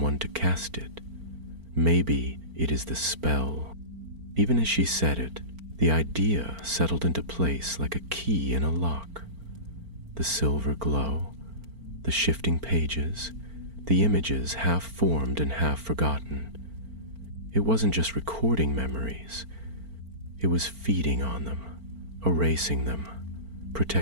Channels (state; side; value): late; left; 4.4 ms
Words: to cast it. Maybe it is the spell." Even as she said it, The idea settled into place like a key in a lock. The silver glow, the shifting pages, the images half formed and half forgotten. It wasn't just recording memories. It was feeding on them, erasing them,